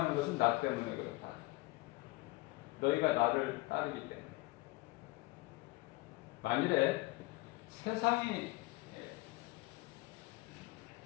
것은 나 때문에 그렇다. 너희가 나를 따르기 때문에. 만일에 세상이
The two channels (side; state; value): right; quieter; 21.8 dB